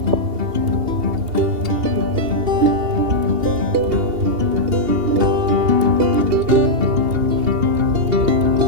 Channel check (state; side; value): late; left; 2.8 ms